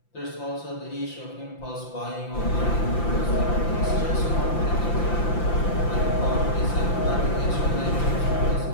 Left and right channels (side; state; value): right; late; 5.8 ms